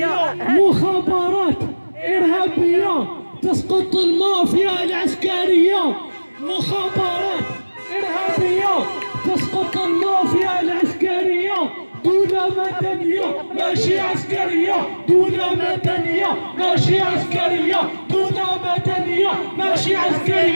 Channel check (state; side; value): inverted; both; correlation -1.00